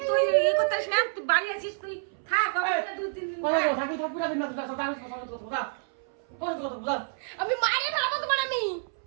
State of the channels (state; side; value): silent; left; 59 dB below the other